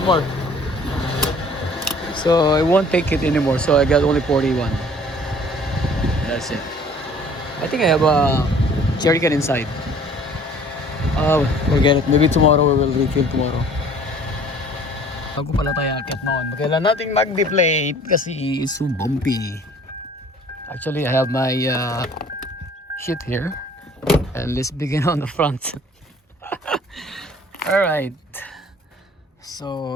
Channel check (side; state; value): both; normal; correlation 0.52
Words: More. So I won't take it anymore. So I got only 41. That's it. I think I have a jerry can inside. Forget it. Maybe tomorrow we will refill tomorrow. Bago pala tayo akit noon, kailan natin mag-deflate kasi it's so bumpy. Actually, I have my shit here. And let's begin on the front. Alright.